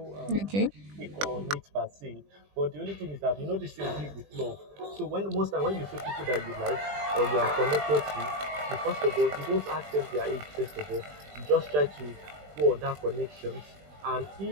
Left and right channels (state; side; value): late; left; 20 ms